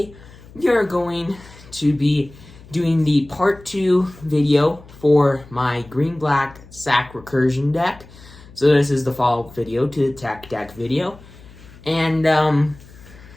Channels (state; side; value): noise; left; hum, 21 dB below the sound